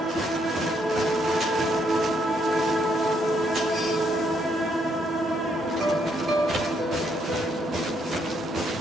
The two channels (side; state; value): both; normal; correlation 0.73